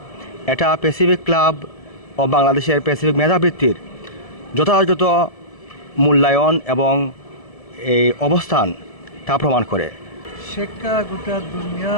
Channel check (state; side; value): late; right; 1.7 ms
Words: এটা প্যাসিফিক ক্লাব ও বাংলাদেশের প্যাসিফিক মেধাবৃত্তির যথাযথ মূল্যায়ন এবং এই অবস্থান তা প্রমাণ করে। শিক্ষা গোটা